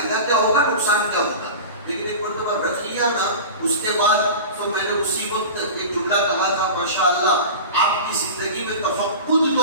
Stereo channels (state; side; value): inverted; both; correlation -0.32